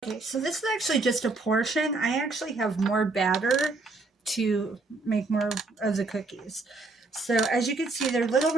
Okay, so this is actually just a portion. I actually have more batter to make more of the cookies. So as you can see, they're little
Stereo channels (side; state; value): left; quieter; 3.5 dB